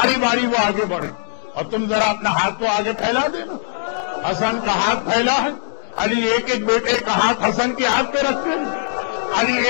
باری وہ آگے بڑھے اور تم ذرا اپنا ہاتھ تو آگے پھیلا دینا۔ حسن کا ہاتھ پھیلا ہے، علی ایک ایک بیٹے کا ہاتھ حسن کے ہاتھ پہ رکھتے ہیں، علی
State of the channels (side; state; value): right; silent; digital silence